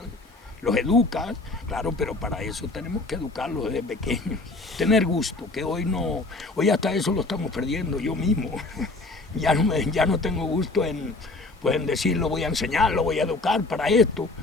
Los educas, claro, pero para eso tenemos que educarlos desde pequeños. Tener gusto, que hoy no, hoy hasta eso lo estamos perdiendo yo mismo. Ya no tengo gusto en, pues, en decir, lo voy a enseñar, lo voy a educar para esto.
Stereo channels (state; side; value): quieter; right; 3.2 dB